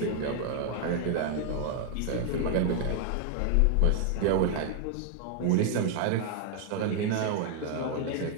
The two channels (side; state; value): both; different; correlation 0.00